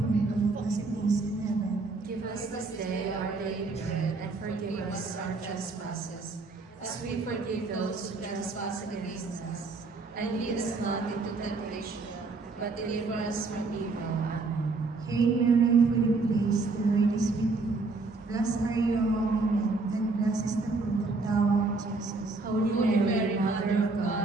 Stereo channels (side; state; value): left; quieter; 3.7 dB